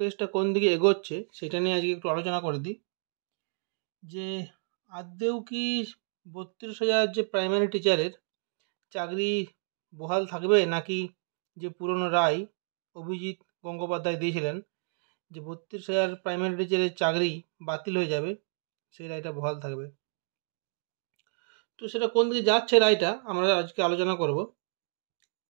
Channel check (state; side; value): silent; left; digital silence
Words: কোন দিকে এগোচ্ছে সেটা নিয়ে আজকে একটু আলোচনা করে দিই। যে আদৌ কি 32,000 যে প্রাইমারি টিচারের চাকরি বহাল থাকবে, নাকি যে পুরনো রায় অভিজিৎ গঙ্গোপাধ্যায় দিয়েছিলেন যে 32,000 প্রাইমারি টিচারের চাকরি বাতিল হয়ে যাবে, সেই রায়টা বহাল থাকবে। তো সেটা কোন দিকে যাচ্ছে রায়টা আমরা আজকে আলোচনা করব।